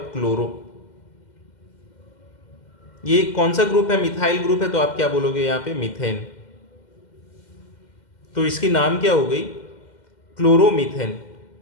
क्लोरो। ये कौन सा ग्रुप है, मिथाइल ग्रुप है, तो आप क्या बोलोगे यहां पे, मीथेन। तो इसकी नाम क्या हो गई, क्लोरोमीथेन।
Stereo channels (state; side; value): late; right; 2.1 ms